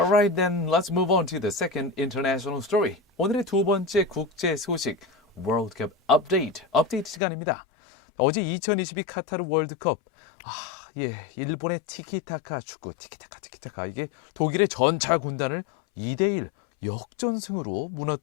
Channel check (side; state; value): right; drops out; at 7.2 s